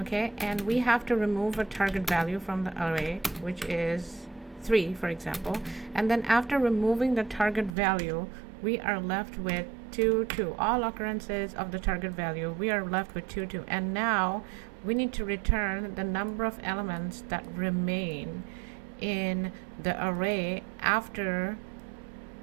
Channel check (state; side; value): drops out; left; at 7.8 s